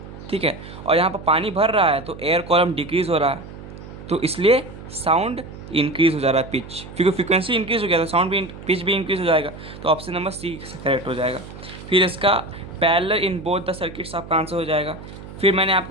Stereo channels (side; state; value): right; noise; hum, 14 dB below the sound